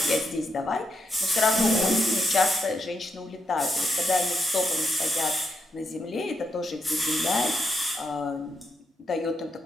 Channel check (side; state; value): both; normal; correlation 0.81